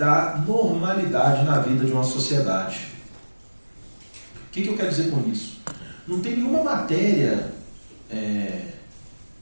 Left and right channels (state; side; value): inverted; both; correlation -1.00